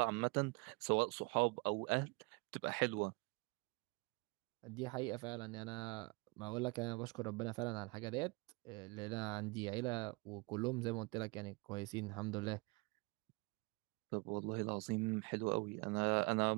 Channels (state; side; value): quieter; left; 27.7 dB